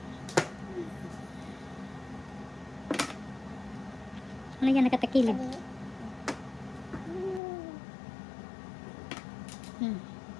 Ano yan nakatakilid? Hmm.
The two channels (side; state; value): right; drops out; at 7.4 s